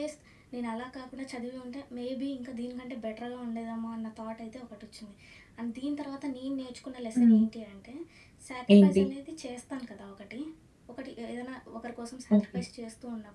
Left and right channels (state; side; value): identical; both; correlation 1.00